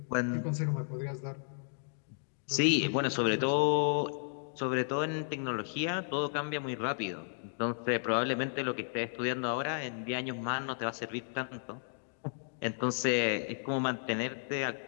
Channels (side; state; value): right; silent; digital silence